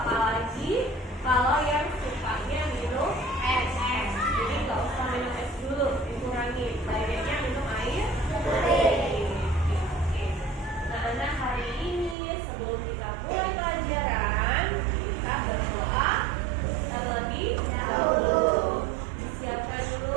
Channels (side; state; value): left; drops out; at 12.2 s